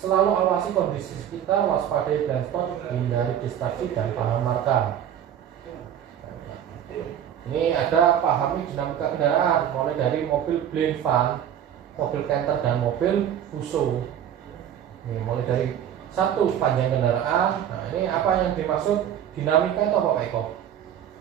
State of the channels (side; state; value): left; quieter; 9.8 dB